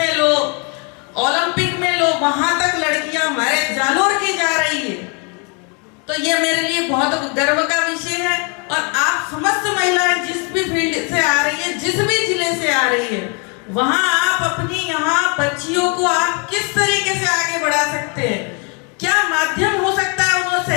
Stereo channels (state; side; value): quieter; right; 34.8 dB